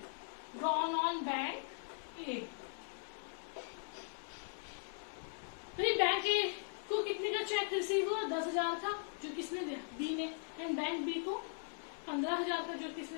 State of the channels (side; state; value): right; silent; digital silence